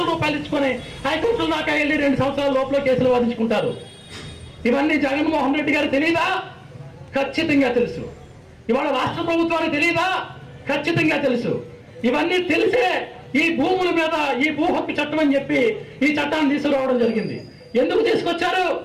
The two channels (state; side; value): identical; both; correlation 1.00